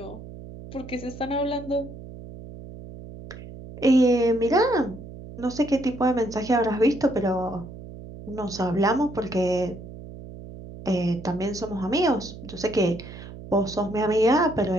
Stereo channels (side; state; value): right; noise; hum, 14 dB below the sound